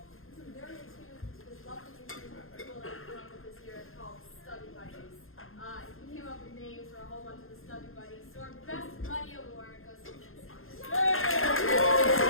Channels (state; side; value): late; right; 0.61 ms